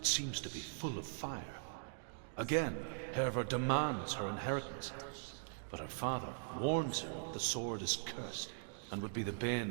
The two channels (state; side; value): silent; left; digital silence